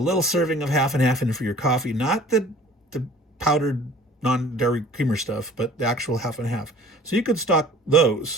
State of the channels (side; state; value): both; normal; correlation 0.49